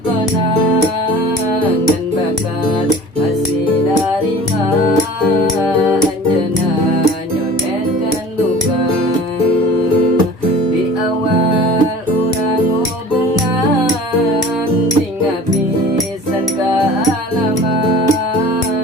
ngan bakat masih narima anjana nyonetkan luka di awal urang hubungan tinggal pisan kealaman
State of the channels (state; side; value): normal; both; correlation 0.43